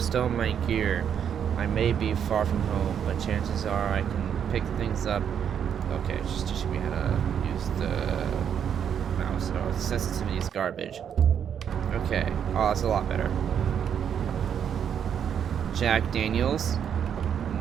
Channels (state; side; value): quieter; left; 8.4 dB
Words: my gear. I may be far from home, but chances are I can pick things up. Okay, just teaching me how to use the mouse. Oh, the sensitivity is garbage. Okay. Oh, that's a lot better. Jack Daniels.